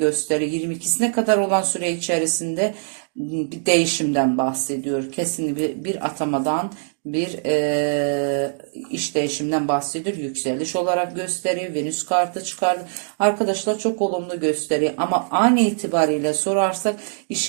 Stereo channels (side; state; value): left; silent; 64 dB below the other